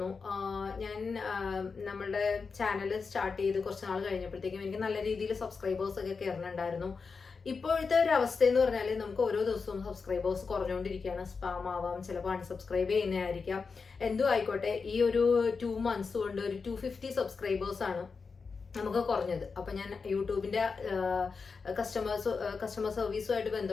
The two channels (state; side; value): quieter; right; 4.9 dB